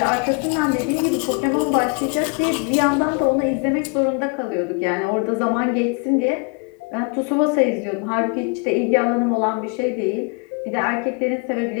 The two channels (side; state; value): right; quieter; 34.5 dB